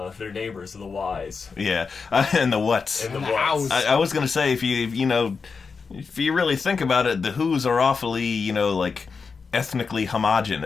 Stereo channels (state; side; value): quieter; right; 5.1 dB